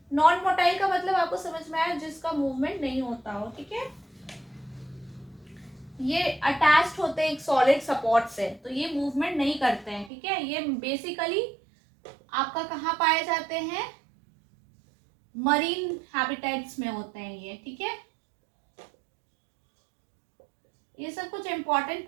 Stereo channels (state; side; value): drops out; left; at 10.1 s